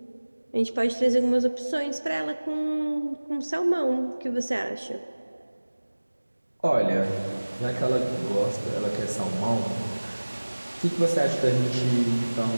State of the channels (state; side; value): inverted; both; correlation -1.00